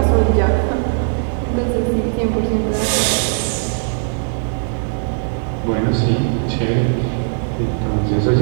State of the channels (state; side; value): silent; left; digital silence